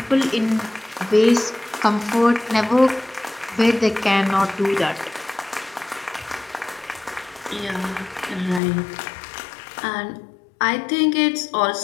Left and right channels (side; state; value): right; drops out; at 8.6 s